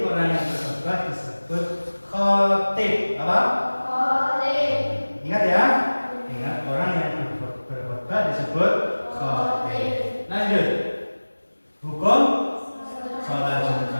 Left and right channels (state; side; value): inverted; both; correlation -1.00